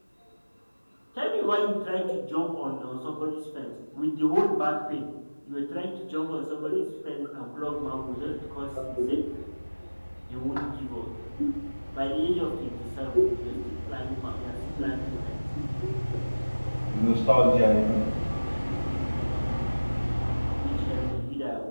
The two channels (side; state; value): both; inverted; correlation -1.00